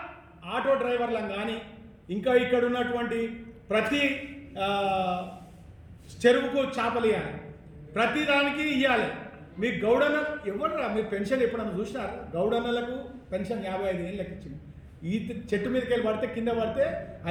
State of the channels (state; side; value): identical; both; correlation 1.00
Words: ఆటో డ్రైవర్లను కానీ, ఇంకా ఇక్కడ ఉన్నటువంటి ప్రతి చెరువుకు చేపలు ఇవ్వాలి, ప్రతి దానికి ఇవ్వాలి. మీ గౌడన్న ఎవరురా? మీరు పెన్షన్ ఎప్పుడన్నా చూసినారు? గౌడన్నలకు పెన్షన్ 55 ఏళ్ళు లెక్క ఇచ్చింది. ఈ చెట్టు మీదకి వెళ్ళి పడితే, కింద పడితే